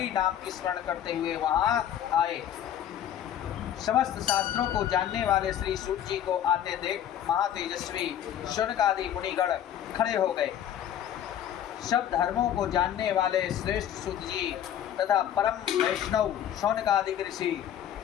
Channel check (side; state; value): right; quieter; 10.4 dB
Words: नाम की स्मरण करते हुए वहाँ आए। समस्त शास्त्रों को जानने वाले श्री सूत जी को आते देख महातेजस्वी शौनकादि मुनिगण खड़े हो गए। सब धर्मों को जानने वाले श्रेष्ठ सूत जी तथा परम वैष्णव शौनकादि ऋषि